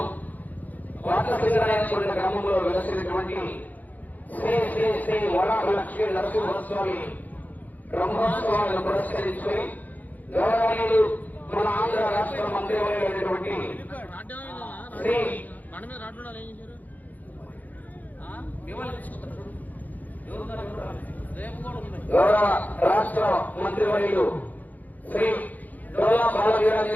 కోట సింగరాయకొండ గ్రామంలో వెలసినటువంటి శ్రీ శ్రీ శ్రీ వరాహ లక్ష్మీ నరసింహస్వామి బ్రహ్మోత్సవాలను పురస్కరించుకుని గౌరవనీయులు మన ఆంధ్ర రాష్ట్ర మంత్రివర్యులైనటువంటి శ్రీ గౌరవ రాష్ట్ర మంత్రివర్యులు శ్రీ డోలా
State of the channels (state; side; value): late; right; 0.081 ms